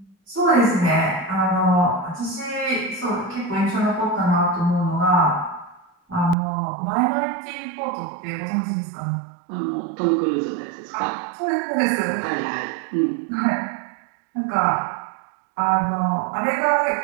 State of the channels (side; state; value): left; drops out; at 6.4 s